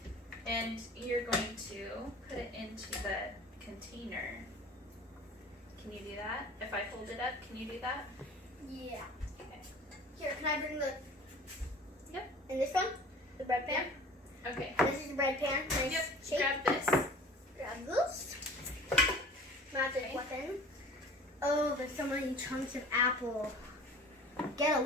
And you're going to put it into the container. Can you do that? If I hold it up, can you do that? Yeah. Okay. Here, can I bring the? Yep. And this one, the bread pan. Okay. This is the bread pan. Nice Yep. shape. Grab this. Grab this. Magic Okay. weapon. Oh, there's so many chunks of apple. Get a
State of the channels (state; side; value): normal; both; correlation 0.44